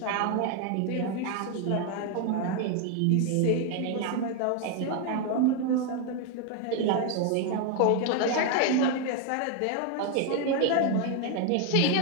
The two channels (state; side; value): different; both; correlation 0.01